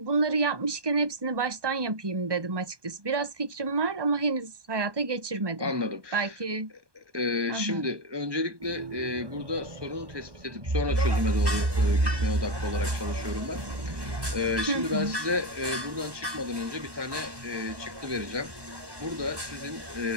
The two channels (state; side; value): late; left; 1.2 ms